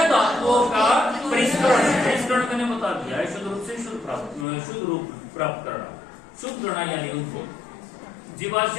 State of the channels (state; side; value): drops out; right; at 4.5 s